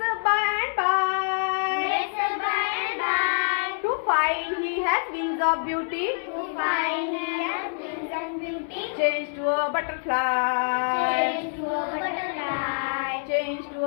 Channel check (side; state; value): right; silent; 59 dB below the other